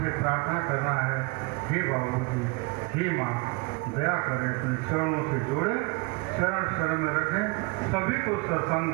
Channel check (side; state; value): left; quieter; 27.8 dB